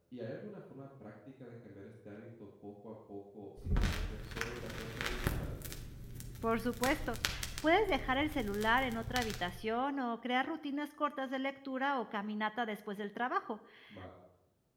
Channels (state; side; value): identical; both; correlation 1.00